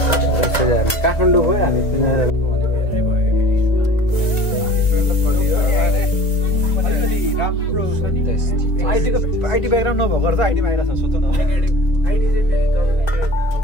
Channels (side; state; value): right; late; 2.2 ms